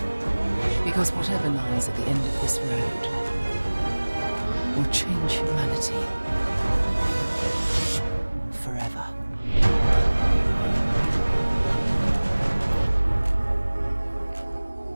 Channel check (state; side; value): inverted; both; correlation -1.00